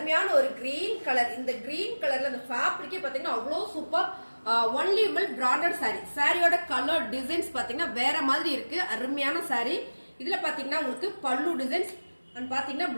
ஒரு கிரீன் கலர். இந்த கிரீன் கலர்ல அந்த ஃபேப்ரிக்கே பாத்தீங்கன்னா அவ்வளவு super. Only Vimal branded saree. சாரியோட கலர் டிசைன்ஸ் பாத்தீங்கன்னா வேற மாதிரி இருக்கு. அருமையான சாரி. இதுல பாத்தீங்கன்னா உங்களுக்கு பல்லு டிசைன்ஸ் அண்ட் பாத்தீங்கன்னா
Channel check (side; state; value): both; inverted; correlation -1.00